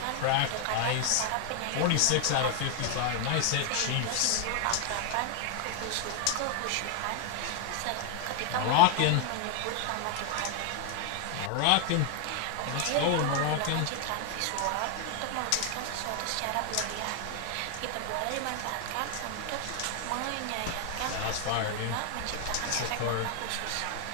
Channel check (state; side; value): different; both; correlation 0.00